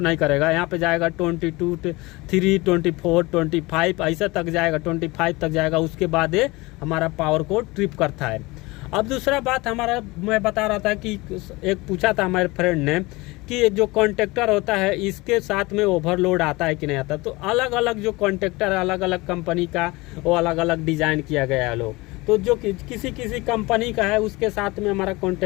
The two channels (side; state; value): right; quieter; 22.7 dB